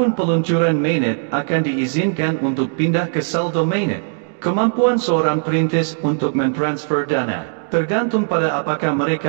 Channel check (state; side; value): silent; left; 64 dB below the other